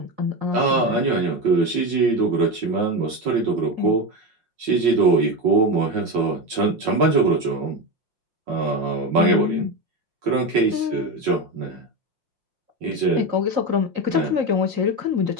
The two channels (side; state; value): left; late; 5.7 ms